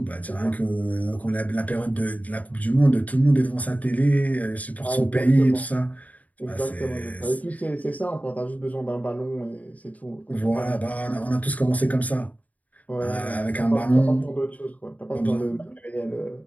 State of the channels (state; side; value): late; right; 0.073 ms